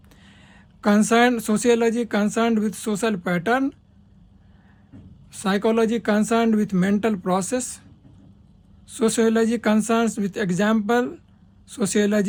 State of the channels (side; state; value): both; identical; correlation 1.00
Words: Sociology concerned with social pattern. Psychology concerned with mental process. Sociology concerns with example.